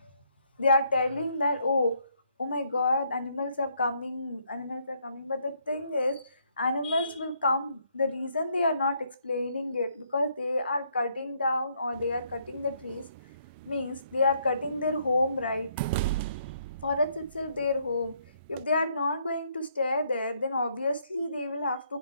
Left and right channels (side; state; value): both; inverted; correlation -0.71